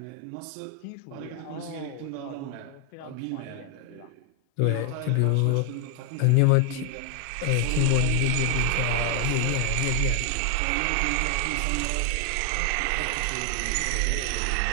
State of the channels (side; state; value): both; different; correlation 0.00